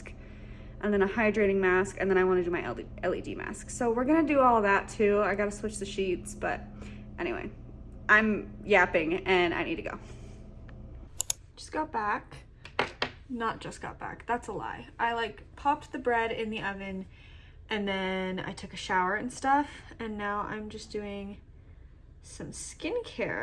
and then a hydrating mask, and then I want to do my LED mask. So we're gonna do all that too. I gotta switch the sheets, but anyway, I'm yapping and I need to go. Just got back. Not just got back, that's a lie. I like popped the bread in the oven and then I took a shower and stuff, and now I'm just doing some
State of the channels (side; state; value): both; identical; correlation 1.00